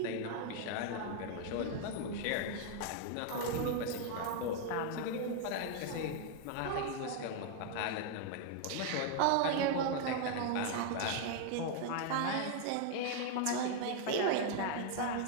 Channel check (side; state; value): both; different; correlation 0.00